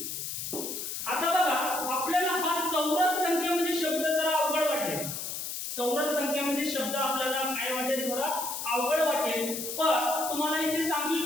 आता बघा आपल्याला हा चौरस संख्या म्हणजे शब्द जरा अवघड वाटेल. चौरस संख्या म्हणजे शब्द आपल्याला काय वाटेल थोडा अवघड वाटेल. पण तुम्हाला इथे सांगून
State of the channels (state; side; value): noise; left; hiss, 5 dB below the sound